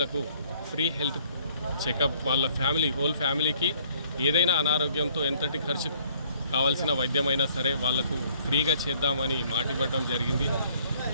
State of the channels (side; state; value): both; inverted; correlation -0.61